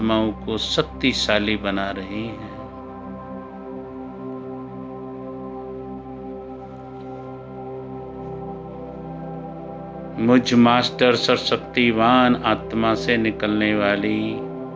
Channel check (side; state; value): both; identical; correlation 1.00